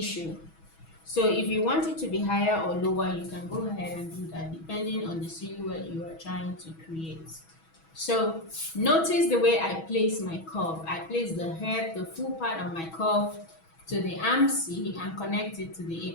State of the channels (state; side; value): late; right; 6.2 ms